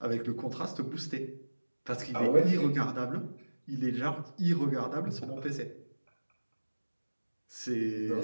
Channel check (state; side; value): inverted; both; correlation -1.00